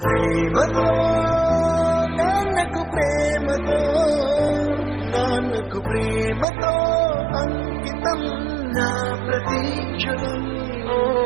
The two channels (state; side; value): drops out; left; at 6.5 s